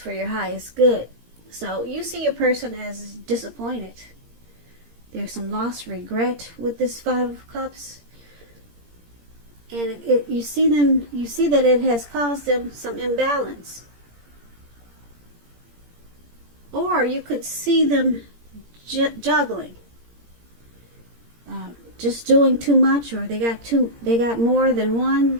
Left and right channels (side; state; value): left; late; 17 ms